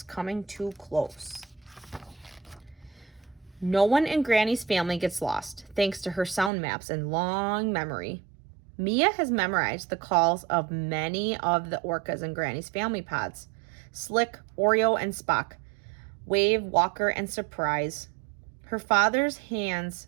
coming too close. No one in Granny's family gets lost, thanks to her sound maps and long memory. Mia has memorized the calls of many of the orcas in Granny's family pods. Slick, Oreo, and Spock. Wave, Walker, and Surprise. Her father hands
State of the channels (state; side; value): drops out; left; at 6.5 s